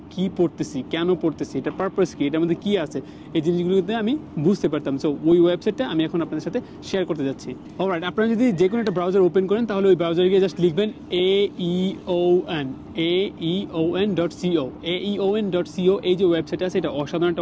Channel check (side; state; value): both; identical; correlation 1.00